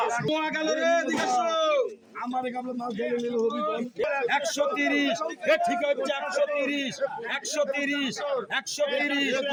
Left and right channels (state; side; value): identical; both; correlation 1.00